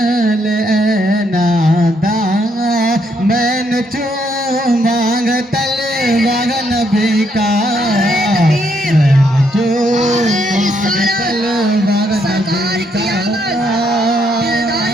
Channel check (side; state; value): both; normal; correlation 0.74